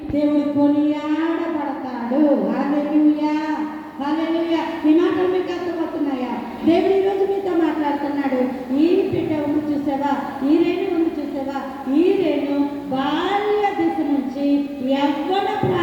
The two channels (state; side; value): identical; both; correlation 1.00